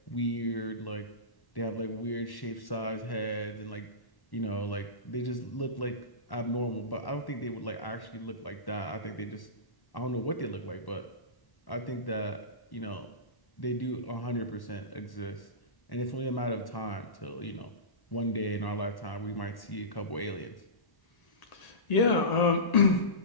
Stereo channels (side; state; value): right; late; 1.1 ms